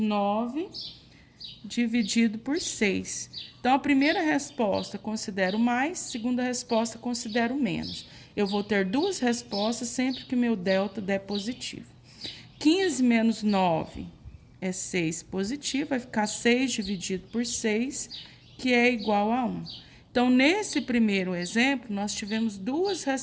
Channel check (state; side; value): identical; both; correlation 1.00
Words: dividido por 6. Então, a primeira resposta considero mais, segunda resposta considero menos. Eu vou ter duas respostas sempre que meu delta der positivo. 15 menos 9 é 6 positivo, vai ficar 6 dividido por 6, que é igual a 1. Então, nesse primeiro exemplo, nós tivemos duas